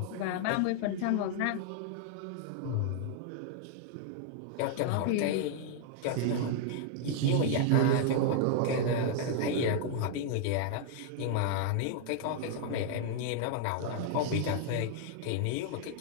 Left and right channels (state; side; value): different; both; correlation -0.01